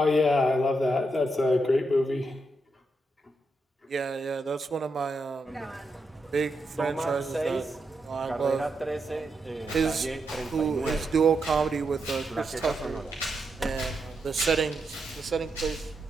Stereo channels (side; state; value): both; normal; correlation 0.83